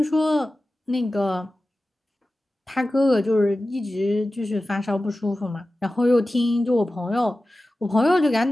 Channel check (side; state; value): both; normal; correlation 0.95